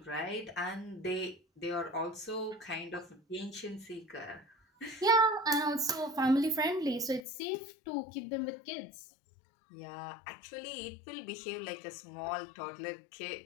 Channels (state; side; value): drops out; right; at 7.2 s